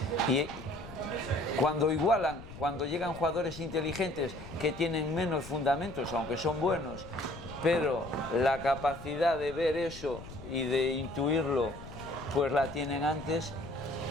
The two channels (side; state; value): left; noise; rumble, 14 dB below the sound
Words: Y cuando llegan jugadores inteligentes que tienen menos fundamentos, aunque son buenos, pero la capacidad de ver eso y de intuirlo, pues la tienen antes,